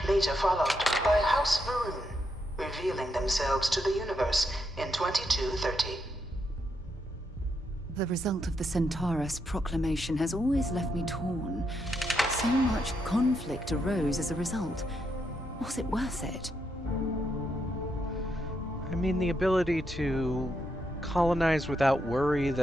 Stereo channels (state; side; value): normal; both; correlation 0.80